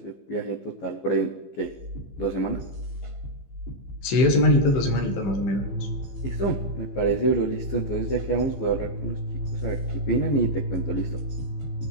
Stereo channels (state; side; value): late; right; 15 ms